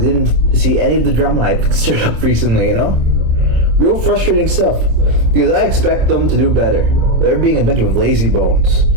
They didn't see any of the drama I've stirred up recently, you know? Real frustrating stuff. Because I expect them to do better. They're being a bunch of lazy bones,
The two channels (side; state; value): left; late; 27 ms